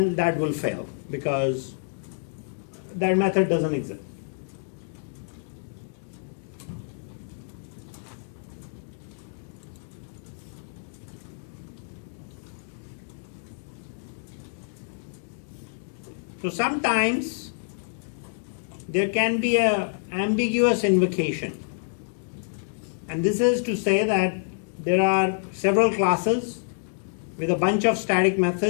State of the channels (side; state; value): right; silent; digital silence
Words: that will fail because that method doesn't exist. So sometimes there can be an ambiguous invocation. And this is to say that there are several classes with a bunch of static